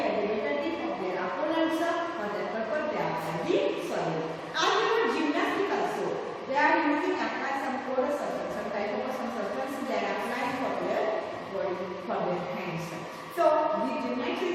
the better grip of their opponents, for that purpose they apply the soil. As you know, gymnastics also, they are using apply some chorus circles, some type of some circles they are applying for their body, for their hands. So the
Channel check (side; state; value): both; identical; correlation 1.00